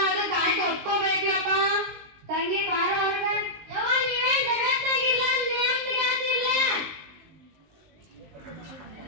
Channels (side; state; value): left; late; 19 ms